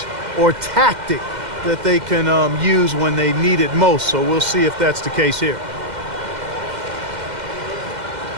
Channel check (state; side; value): late; left; 2.1 ms